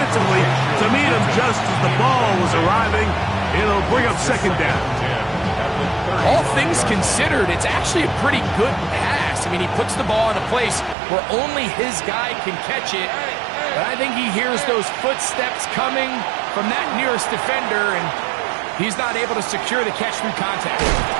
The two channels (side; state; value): left; drops out; at 11.0 s